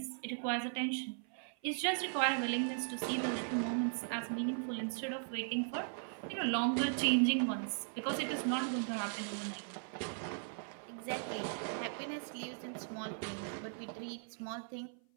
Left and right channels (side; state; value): left; silent; 52 dB below the other